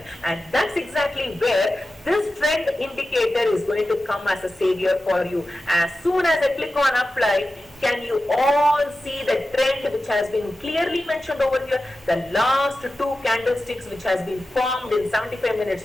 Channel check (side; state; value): both; normal; correlation 0.93